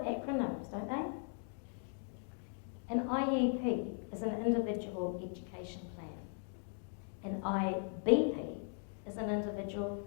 acronyms, don't they? An IEP is an individual education plan. An IBP is an individual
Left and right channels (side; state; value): right; silent; 52 dB below the other